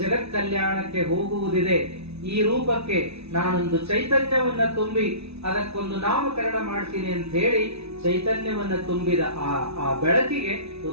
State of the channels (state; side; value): late; left; 0.79 ms